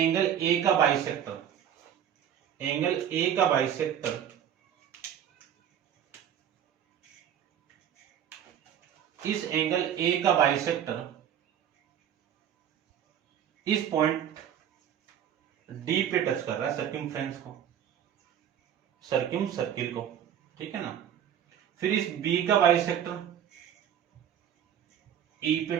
A का बाइसेक्टर, एंगल A का बाइसेक्टर इस एंगल A का बाइसेक्टर इस पॉइंट D पे टच कर रहा है, सर्कमफ्रेंस को, सर्किम सर्किल को, ठीक है ना। फिर इस B का बाइसेक्टर E पे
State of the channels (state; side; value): quieter; left; 9.7 dB